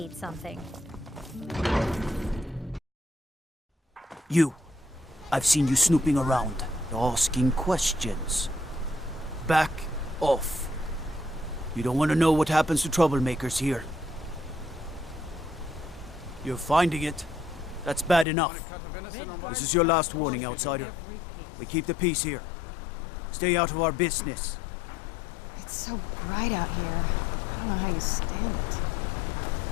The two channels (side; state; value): right; drops out; at 18.2 s